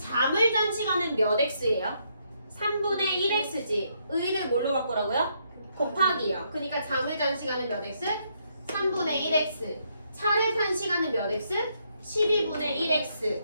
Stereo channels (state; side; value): inverted; both; correlation -0.75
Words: 잔 시간은 몇 x예요? 3분의 1x지. 의를 뭘로 바꾸라고요? 곱하기요. 그러니까 잠을 잔 시간은 몇 x? 3분의 1x. 차를 탄 시간은 몇 x? 12분의 1x.